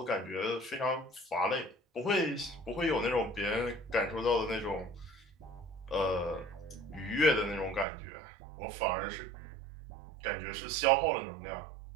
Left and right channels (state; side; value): drops out; left; at 7.9 s